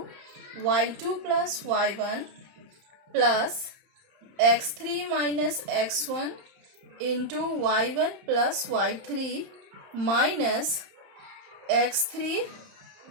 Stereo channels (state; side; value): late; left; 31 ms